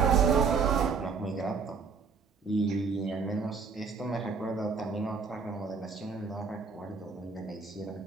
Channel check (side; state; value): left; quieter; 5.2 dB